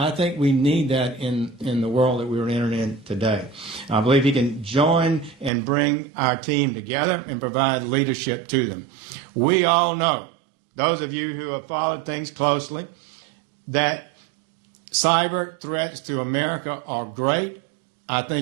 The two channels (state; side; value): drops out; left; at 5.5 s